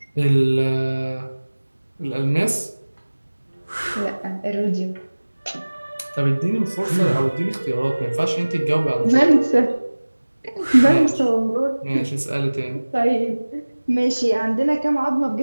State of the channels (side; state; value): both; inverted; correlation -1.00